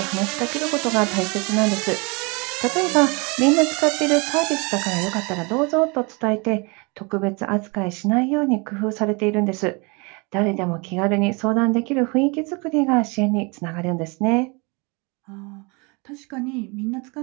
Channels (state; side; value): quieter; left; 29.5 dB